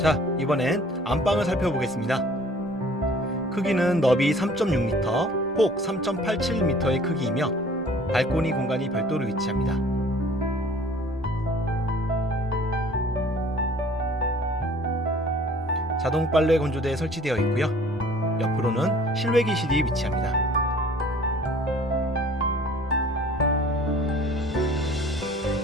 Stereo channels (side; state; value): both; normal; correlation 0.51